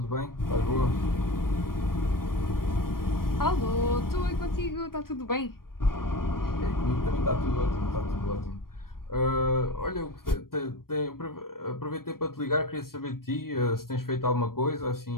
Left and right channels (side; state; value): right; late; 0.93 ms